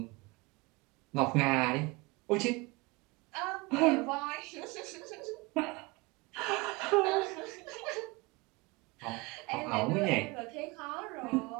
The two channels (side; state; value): left; quieter; 24.7 dB